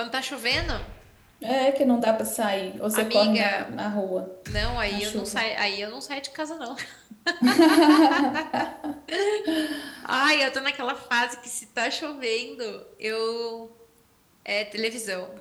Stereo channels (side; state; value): both; identical; correlation 1.00